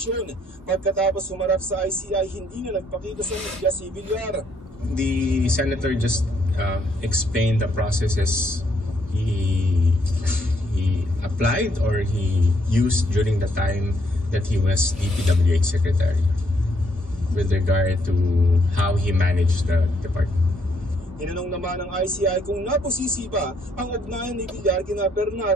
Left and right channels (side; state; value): both; normal; correlation 0.71